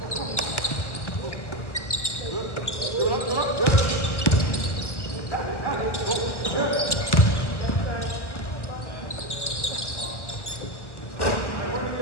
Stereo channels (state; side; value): late; right; 1.3 ms